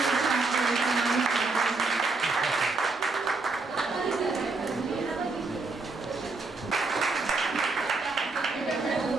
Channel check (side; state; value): left; quieter; 3.8 dB